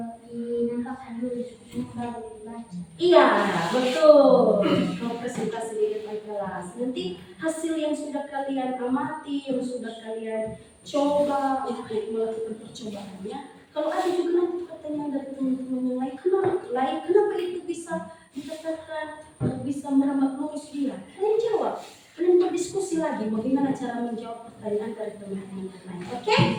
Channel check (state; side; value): identical; both; correlation 1.00